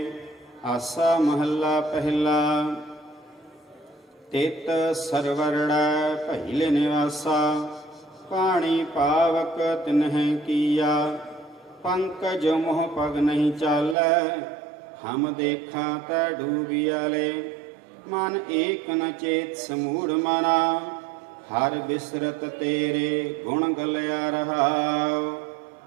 ਆਸਾ ਮਹੱਲਾ ਪਹਿਲਾ। ਤਿਤ ਸਰਵਰੜੈ ਪਹਿਲੇ ਨਿਵਾਸਾ, ਪਾਣੀ ਪਾਵਕ ਤਿਨਹਿ ਕੀਆ। ਪੰਕਜ ਮੋਹ ਪਗ ਨਹੀਂ ਚਾਲੈ, ਹਮ ਦੇਖਾਂ ਤੈ ਡੂਬਿਆਲੇ। ਮਨ ਏਕ ਨ ਚੇਤ ਸਮੂੜ ਮਨਾ, ਹਰ ਬਿਸਰਤ ਤੇਰੇ ਗੁਣ ਗਲਿਆ ਰਹਾਉ।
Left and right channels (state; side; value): drops out; left; at 14.0 s